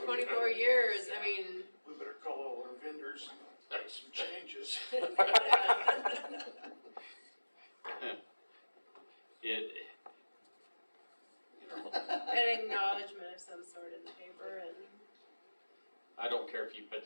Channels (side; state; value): both; inverted; correlation -1.00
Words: 24 years, I mean, We better call all our vendors and make some changes. It, you know, an acknowledgement of some sort in the paper and. I don't care if you